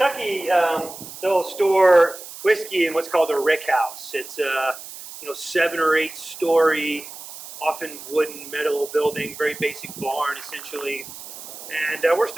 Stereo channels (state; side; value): noise; right; hiss, 13 dB below the sound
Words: they'll store whiskey in what's called a rick house. It's a 7 or 8 story, often wooden metal building, very basic barn essentially. And we're